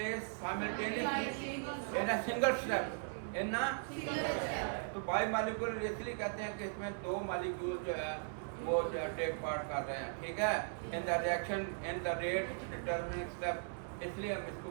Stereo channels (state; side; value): silent; left; 52 dB below the other